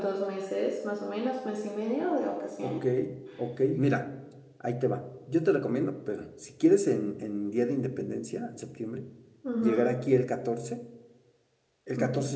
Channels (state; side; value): identical; both; correlation 1.00